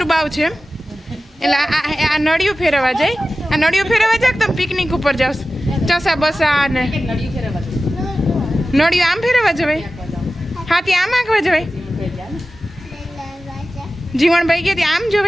બાવ છે એટલે આ નળિયું ફેરવા જાય આ નળિયું ફેરવા જાય તમે પિકનિક ઉપર જાવ ચસા બસા ને નળિયું આમ ફેરવા જવાય હાથી આમ આંકવા જવાય જીવણભાઈ કે આમ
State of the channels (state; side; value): normal; both; correlation 0.95